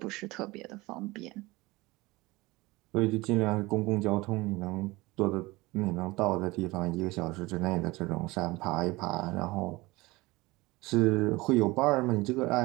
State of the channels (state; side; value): quieter; left; 21.6 dB